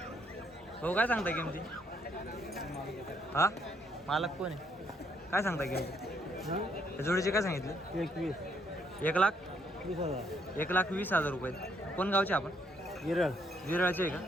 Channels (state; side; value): normal; both; correlation 0.71